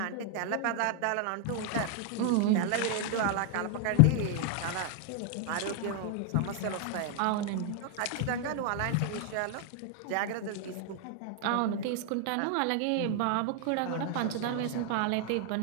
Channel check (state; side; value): different; both; correlation 0.00